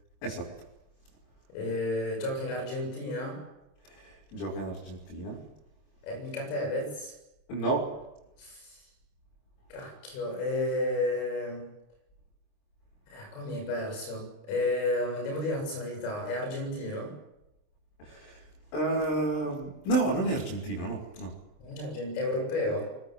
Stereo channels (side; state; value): right; late; 27 ms